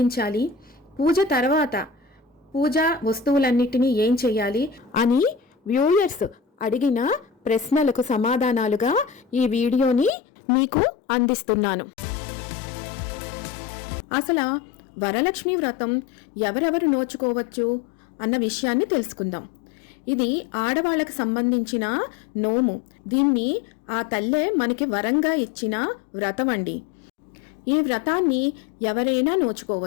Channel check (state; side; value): drops out; right; at 10.1 s